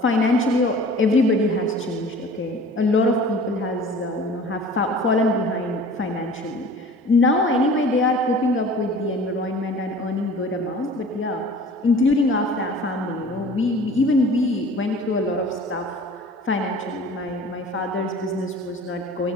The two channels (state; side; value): normal; both; correlation 0.44